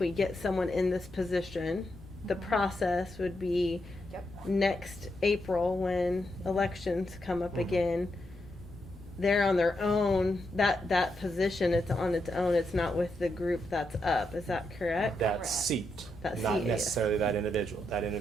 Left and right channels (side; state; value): left; noise; rumble, 23 dB below the sound